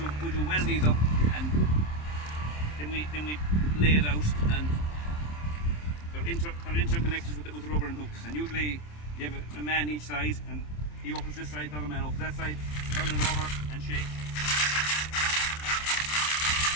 we do weld these up, and then we lay it out, and they're interconnected with the rubber and hooks. And usually you have a man each side, and he opens this side, the other man opens that side, turn it over and shake.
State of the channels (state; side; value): late; right; 27 ms